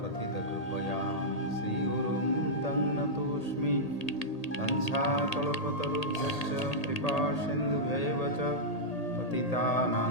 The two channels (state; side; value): late; right; 1.8 ms